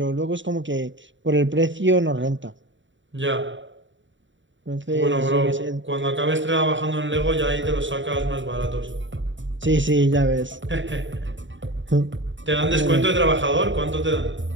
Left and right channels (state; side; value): late; left; 0.55 ms